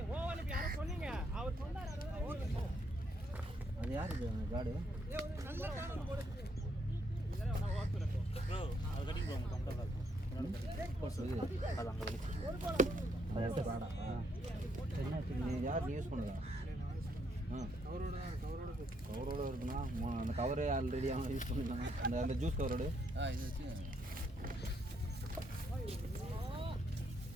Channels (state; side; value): normal; both; correlation 0.74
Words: அது யார் இது காடு? நீ யார் யூஸ் பண்ணுங்க? கவரோட இருக்குண்ணா. அந்த கவரே ஆல்ரெடி அவன் யூஸ் பண்ணிக்கலாம். அந்த ஜூஸ் கவரோடு இது வச்சு